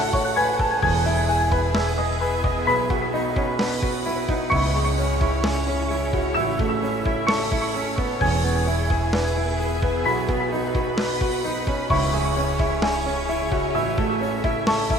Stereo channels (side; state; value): both; normal; correlation 0.64